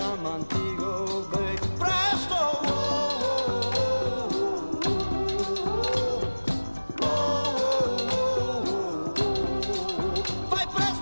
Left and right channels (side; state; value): both; inverted; correlation -1.00